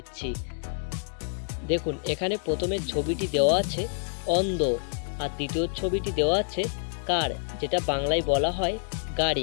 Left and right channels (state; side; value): silent; right; digital silence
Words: দেখুন, এখানে প্রথমে ছবিটি দেওয়া আছে অন্ধ, আর দ্বিতীয় ছবিটি দেওয়া আছে কার, যেটা বাংলায় বলা হয়